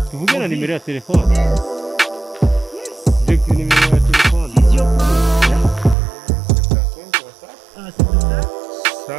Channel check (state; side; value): drops out; left; at 6.0 s